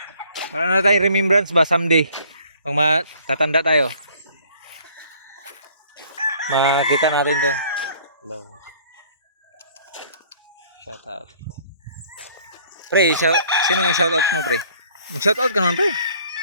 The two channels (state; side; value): inverted; both; correlation -0.57